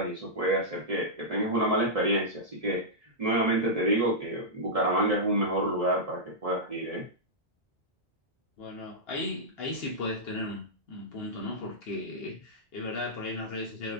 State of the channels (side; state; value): both; normal; correlation -0.11